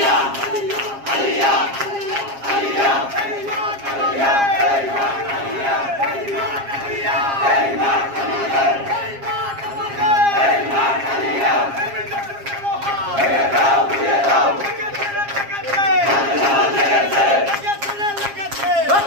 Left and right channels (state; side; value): late; left; 7.4 ms